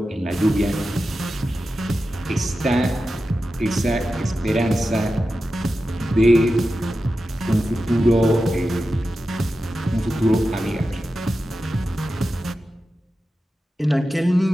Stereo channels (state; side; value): normal; both; correlation 0.92